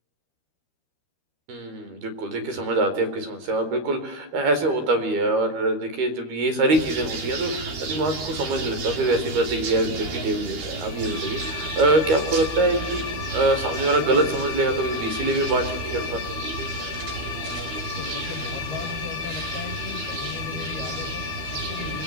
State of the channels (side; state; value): left; late; 13 ms